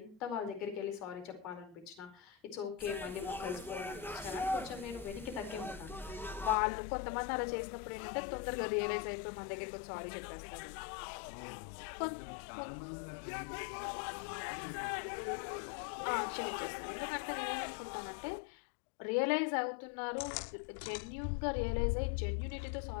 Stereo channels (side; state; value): right; drops out; at 6.6 s